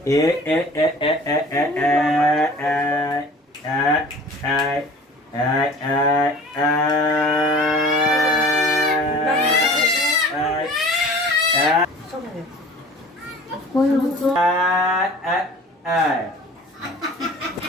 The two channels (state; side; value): normal; both; correlation 0.44